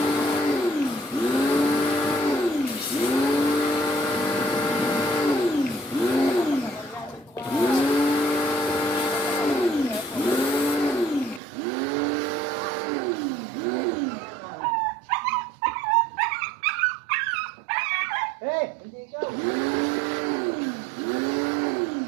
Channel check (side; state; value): left; drops out; at 11.4 s